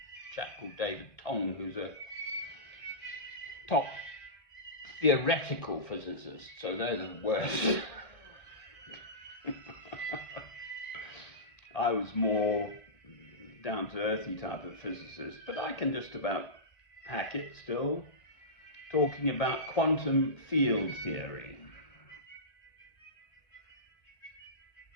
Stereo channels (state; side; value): late; right; 2.0 ms